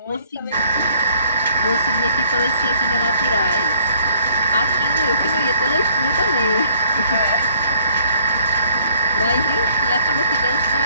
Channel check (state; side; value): inverted; both; correlation -0.60